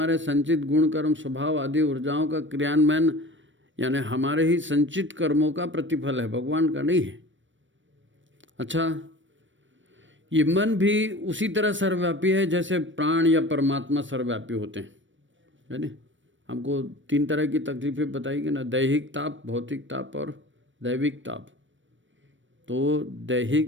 संचित गुण, कर्म, स्वभाव आदि ऊर्जाओं का क्रियान्वयन यानी हमारे ही संचित कर्मों का प्रतिफल है, भगवान का नहीं है। अच्छा, ये मन भी उसी तरह सर्वव्यापी है जैसे प्राण या परमात्मा सर्वव्यापी होते हैं, है ना। हमको 3 तरह की तकलीफें बताई गई ना, दैहिक ताप, भौतिक ताप और दैविक ताप। तो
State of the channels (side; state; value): left; late; 0.56 ms